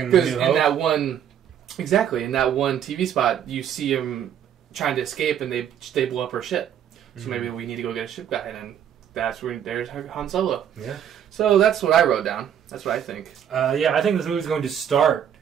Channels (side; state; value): left; quieter; 9.3 dB